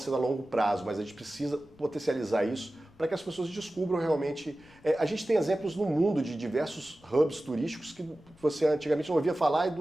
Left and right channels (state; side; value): noise; left; rumble, 27 dB below the sound